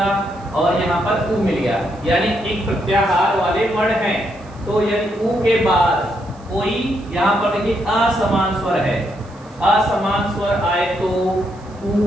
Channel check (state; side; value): noise; right; hiss, 29 dB below the sound